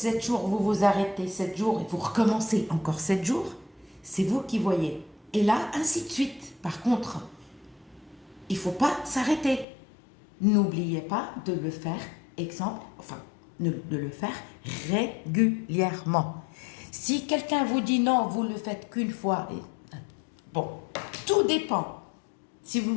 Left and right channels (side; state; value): right; drops out; at 9.7 s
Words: jours, vous vous arrêtez 7 jours et vous recommencez encore 7 jours. C'est vous qui voyez. Et là, ainsi de suite. Par contre, il ne faut pas s'arrêter. N'oubliez pas de le faire, de le faire régulièrement. Si quelqu'un vous dit non, vous le faites qu'une fois, bon, tout dépend. Si vous,